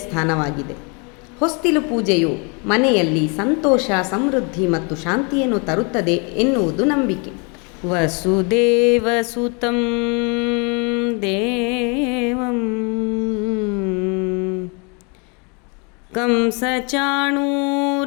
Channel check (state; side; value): quieter; right; 33.4 dB